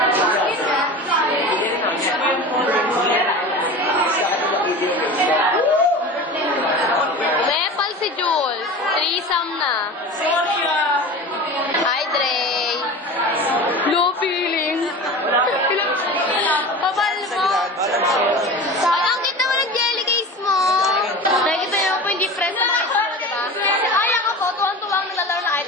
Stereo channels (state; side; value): normal; both; correlation 0.33